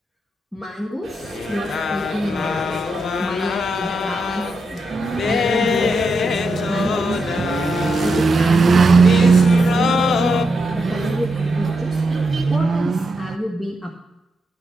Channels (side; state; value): both; normal; correlation 0.84